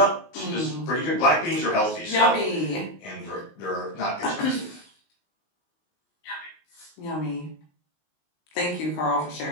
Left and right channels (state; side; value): late; right; 19 ms